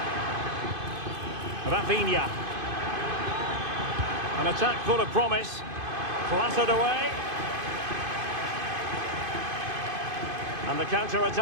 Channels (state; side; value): late; left; 2.5 ms